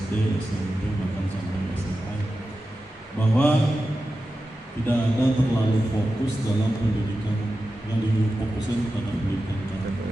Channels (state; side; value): normal; both; correlation 0.92